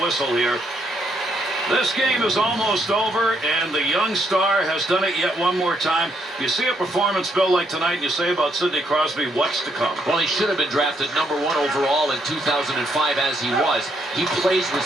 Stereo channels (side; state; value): both; normal; correlation 0.74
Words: whistle here. This game is almost over, and the young star has done it yet one more time. You see a performance, Bill, like tonight, and you say about Sidney Crosby, what's to come? Well, he should have been drafted #1 overall in 2005 as he was. He plays with